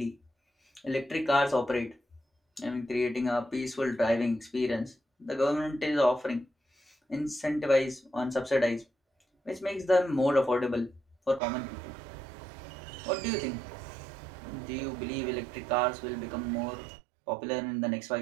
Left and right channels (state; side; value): drops out; left; at 11.4 s